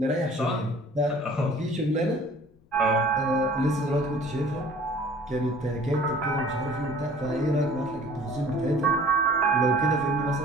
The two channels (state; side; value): noise; left; rumble, 30 dB below the sound